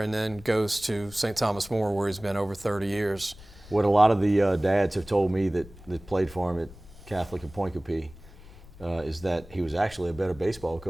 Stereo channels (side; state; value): left; noise; rumble, 19 dB below the sound